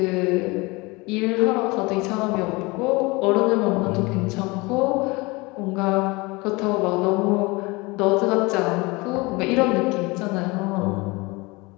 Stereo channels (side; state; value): right; quieter; 24.6 dB